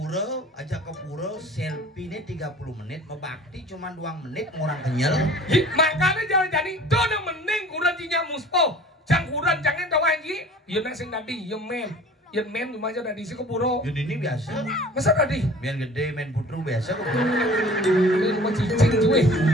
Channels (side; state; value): both; normal; correlation 0.46